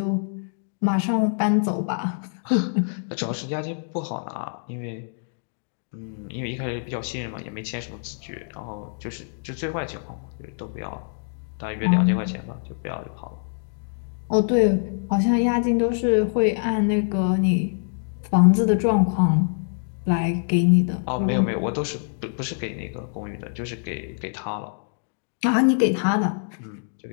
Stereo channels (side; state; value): right; silent; digital silence